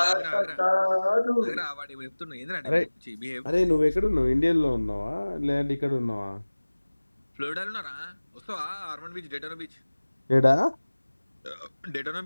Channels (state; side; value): inverted; both; correlation -1.00